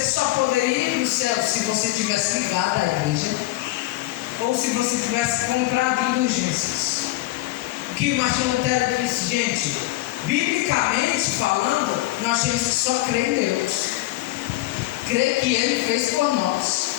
só poderia ir para o céu se você tivesse ligado à igreja, ou se você tivesse comprado indulgências. O que Martinho Lutero disse, gente, biblicamente falando, nós temos que só crer em Deus, crer que Ele fez por nós.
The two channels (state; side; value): quieter; right; 17.7 dB